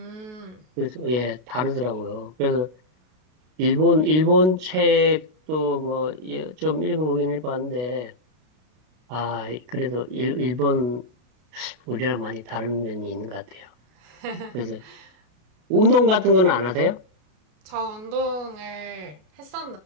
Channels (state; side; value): late; left; 32 ms